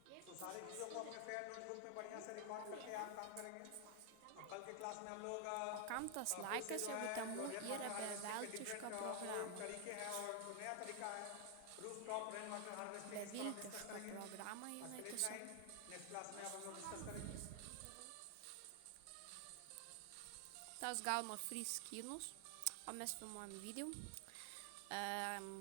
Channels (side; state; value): both; different; correlation 0.00